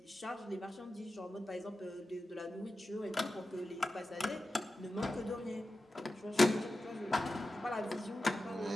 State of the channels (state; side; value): normal; both; correlation 0.92